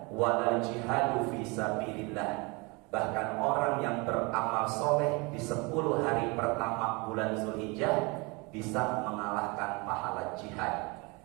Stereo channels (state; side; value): quieter; left; 27.7 dB